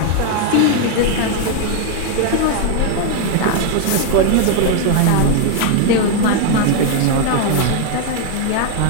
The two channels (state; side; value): different; both; correlation 0.01